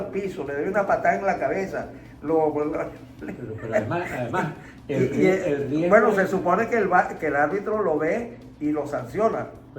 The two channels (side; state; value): both; identical; correlation 1.00